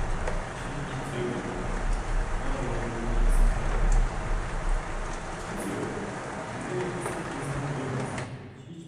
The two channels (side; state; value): both; identical; correlation 1.00